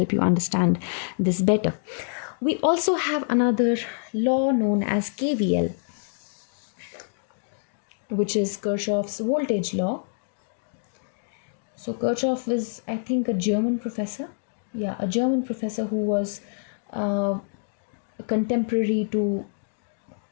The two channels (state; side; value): silent; right; digital silence